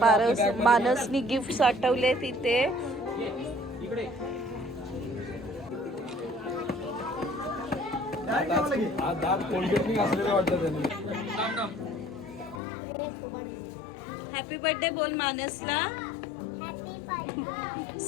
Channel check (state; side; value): drops out; right; at 12.6 s